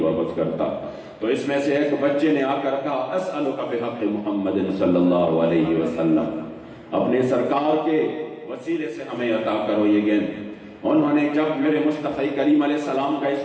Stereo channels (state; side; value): identical; both; correlation 1.00